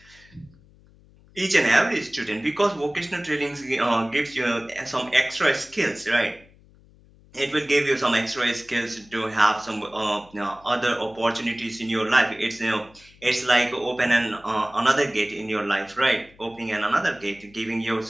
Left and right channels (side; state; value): left; noise; hum, 27 dB below the sound